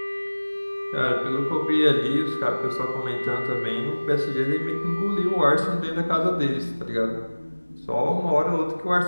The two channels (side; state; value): both; inverted; correlation -1.00